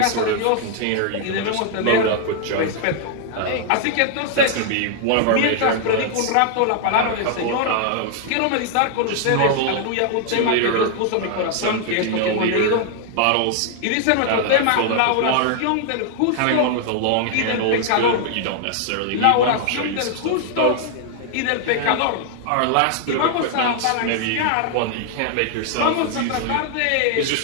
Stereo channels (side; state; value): both; different; correlation 0.00